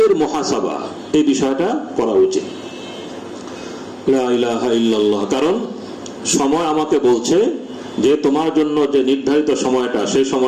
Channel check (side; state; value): both; identical; correlation 1.00